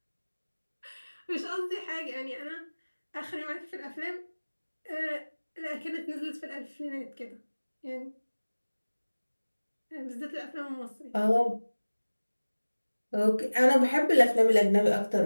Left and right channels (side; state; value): both; inverted; correlation -1.00